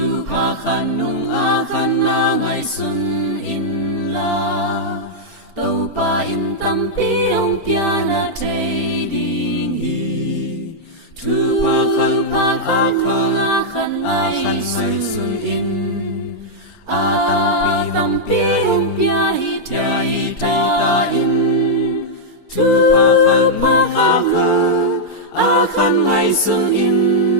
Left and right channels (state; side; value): late; right; 4.4 ms